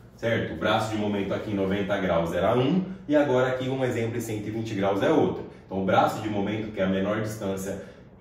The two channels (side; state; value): both; identical; correlation 1.00